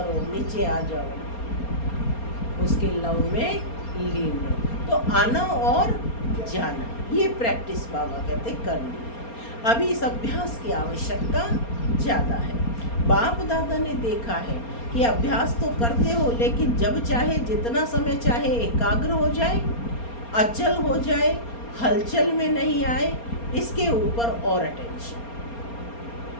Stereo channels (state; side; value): late; right; 4.3 ms